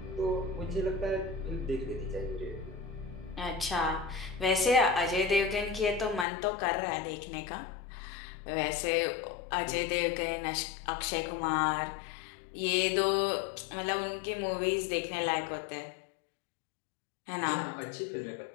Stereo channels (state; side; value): drops out; right; at 6.2 s